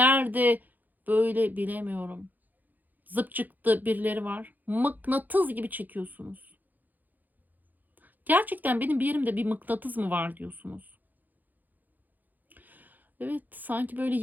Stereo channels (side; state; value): left; late; 0.084 ms